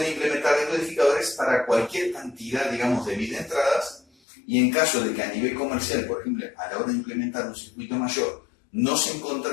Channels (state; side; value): drops out; right; at 4.0 s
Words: implementar decodificadores para cualquier cantidad, digamos, de bits de entradas, y en caso de que a nivel comercial, por ejemplo, a la hora de implementar un circuito mayor, no se